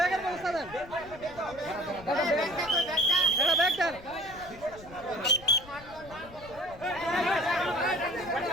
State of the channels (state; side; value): noise; left; rumble, 19 dB below the sound